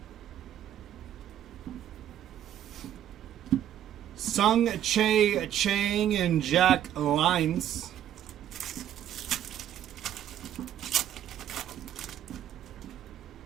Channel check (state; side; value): quieter; left; 10.9 dB